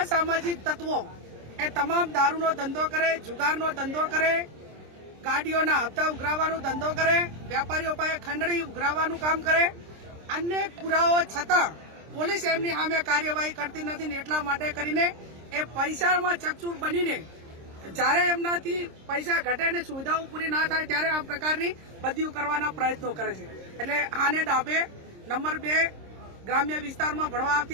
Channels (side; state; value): left; late; 26 ms